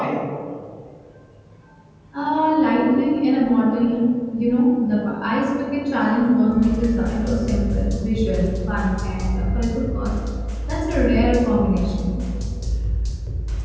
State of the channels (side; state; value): both; identical; correlation 1.00